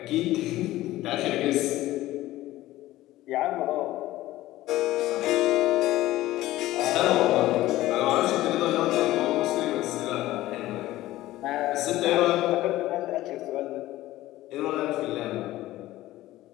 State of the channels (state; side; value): quieter; right; 16.1 dB